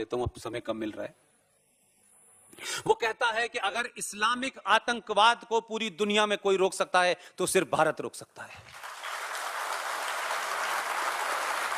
हूं, अब समय कम मिल रहा है। वो कहता है कि अगर इस्लामिक आतंकवाद को पूरी दुनिया में कोई रोक सकता है तो सिर्फ भारत रोक सकता है।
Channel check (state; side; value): identical; both; correlation 1.00